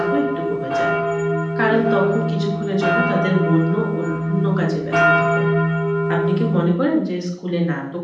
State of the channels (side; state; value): both; identical; correlation 1.00